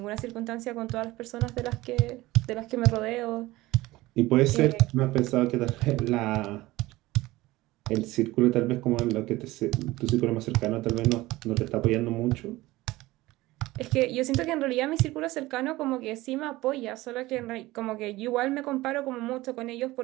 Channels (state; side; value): quieter; left; 18.7 dB